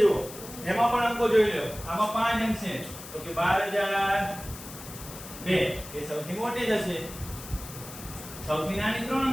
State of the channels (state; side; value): noise; left; hiss, 14 dB below the sound